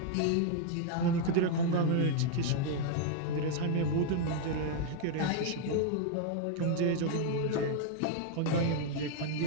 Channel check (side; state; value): both; different; correlation 0.00